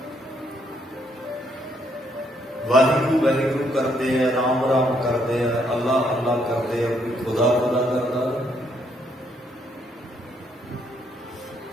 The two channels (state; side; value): normal; both; correlation 0.72